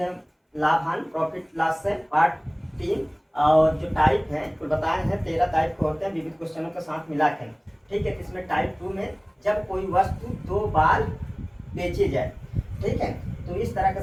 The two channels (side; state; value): both; identical; correlation 1.00